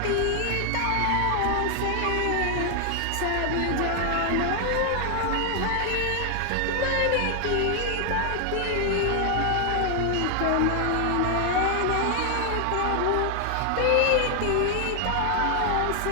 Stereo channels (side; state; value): both; different; correlation 0.00